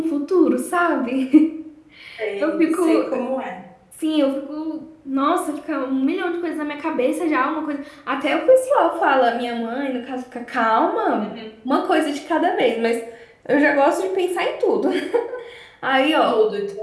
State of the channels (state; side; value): identical; both; correlation 1.00